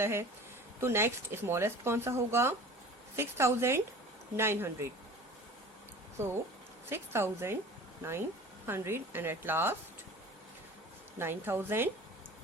है। तो नेक्स्ट स्मॉलेस्ट कौन सा होगा? 6900. So 6900 and at last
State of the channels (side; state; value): both; normal; correlation 0.41